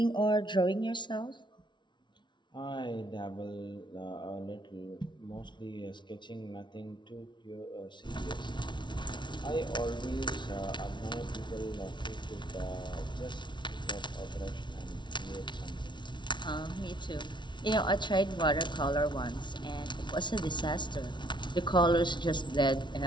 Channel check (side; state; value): right; late; 0.23 ms